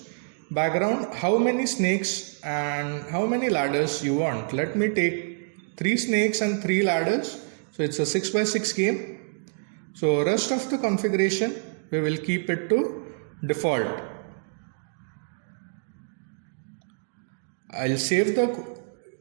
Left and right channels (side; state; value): left; silent; digital silence